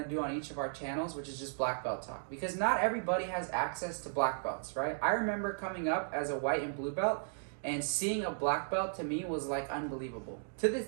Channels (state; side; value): silent; left; digital silence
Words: to do on each of our channels, which is just black belt talk. Because not everybody has access to black belts, right? I remember coming up as a white and blue belt, and seeing a black belt to me was like unbelievable. To this